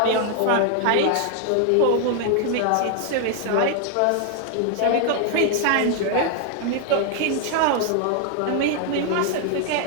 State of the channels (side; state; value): both; different; correlation 0.00